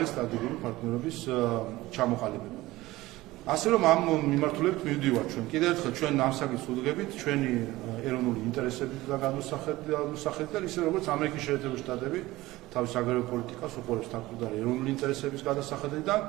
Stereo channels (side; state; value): left; quieter; 18.4 dB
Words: სტრატეგიული პარტნიორობის ჩამოყალიბება. ასე რომ ამ მიმართულებით მივდივართ ჩვენ. კიდევ ერთხელ ჩვენ ამ საკითხს ვუდგებით ჩვენი ეროვნული ინტერესების გადასახედიდან, ისე როგორც ამერიკის შეერთებული შტატები თავის აგრარულ პოლიტიკას უყურებს თავდაპირველი ეროვნული ინტერესების გადასახედიდან